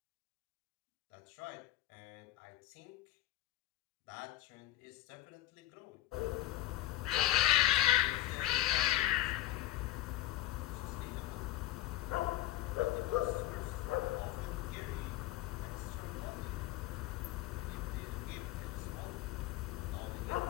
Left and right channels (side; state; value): right; quieter; 14.3 dB